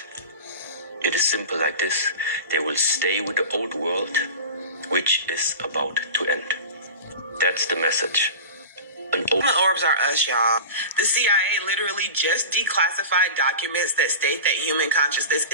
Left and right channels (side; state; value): both; inverted; correlation -0.31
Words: It is simple like this. They will stay with the old world, which is about to end. That's the message. The orbs are us, y'all. The CIA literally just declassified documents that state that human consciousness